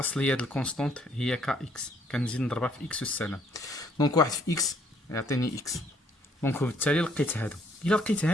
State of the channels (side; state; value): both; normal; correlation 0.66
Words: د الكونستونت هي ك اكس، كنزيد نضربها في اكس والسلام. دونك واحد في اكس يعطيني اكس. دونك وبالتالي لقيت هادو. الا لقيت